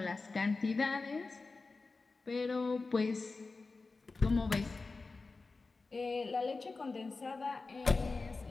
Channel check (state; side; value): quieter; right; 3.9 dB